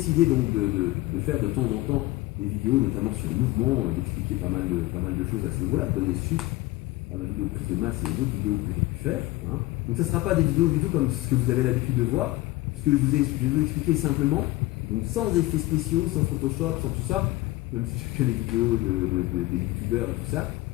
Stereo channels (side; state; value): right; quieter; 18.8 dB